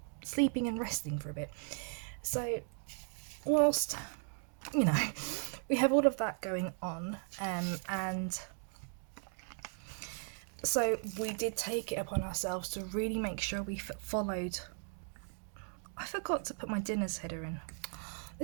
sleeping and resting for a bit. So whilst, you know, we have all of that going on, and so we did take it upon ourselves to really make sure we followed. I forgot to put my dinner's header in.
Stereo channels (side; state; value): left; silent; 53 dB below the other